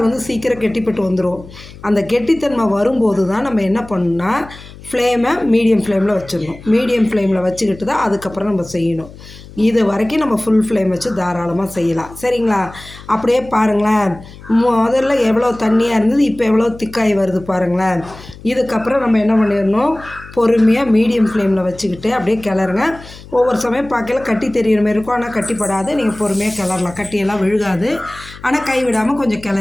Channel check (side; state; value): left; noise; hum, 18 dB below the sound